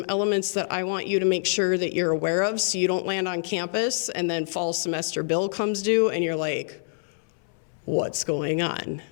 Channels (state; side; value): silent; right; 61 dB below the other